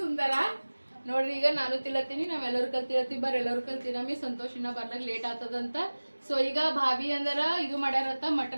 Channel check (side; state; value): both; inverted; correlation -1.00